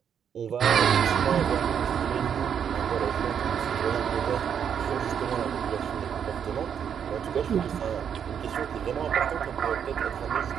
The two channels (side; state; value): left; quieter; 8.1 dB